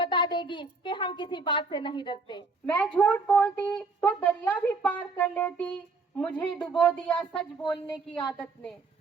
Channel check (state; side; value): quieter; left; 4.1 dB